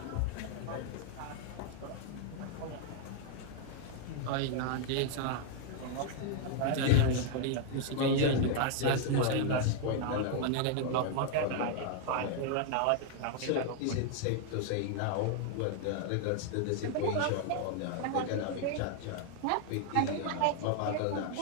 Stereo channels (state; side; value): different; both; correlation 0.00